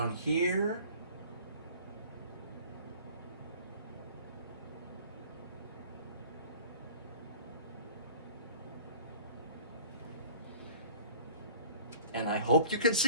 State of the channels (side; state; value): both; inverted; correlation -0.46